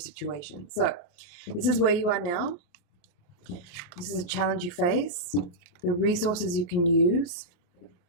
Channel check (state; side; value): late; right; 29 ms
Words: So this is where you are now. This is a challenge you face, the resources you can use,